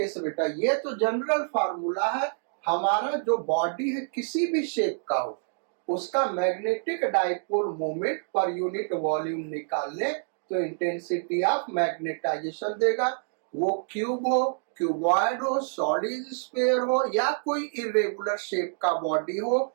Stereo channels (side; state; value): left; silent; digital silence